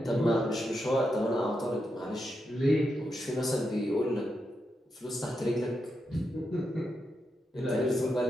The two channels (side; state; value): both; normal; correlation 0.85